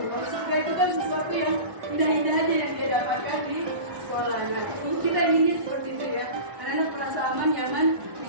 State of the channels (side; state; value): left; late; 1.1 ms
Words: Kalau surga itu kan sesuatu yang indah-indah aja yang dia dapatkan di sekolah. Nah, kita inginnya seperti itu ya. Anak-anak merasa aman, nyaman